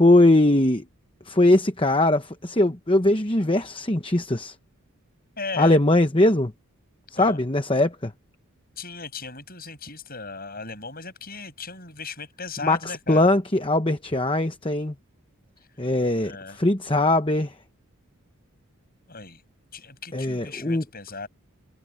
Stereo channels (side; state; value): both; normal; correlation 0.64